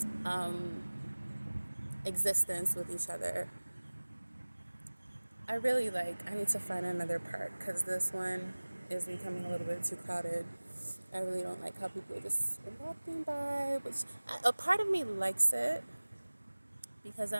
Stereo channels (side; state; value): both; inverted; correlation -1.00